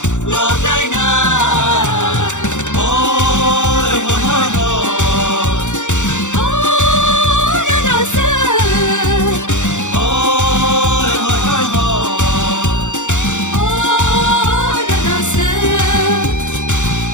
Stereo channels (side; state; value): right; late; 0.85 ms